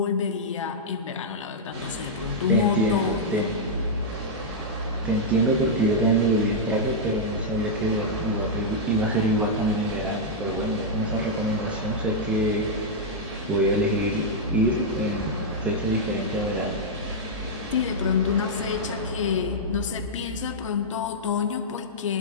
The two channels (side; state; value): both; normal; correlation -0.07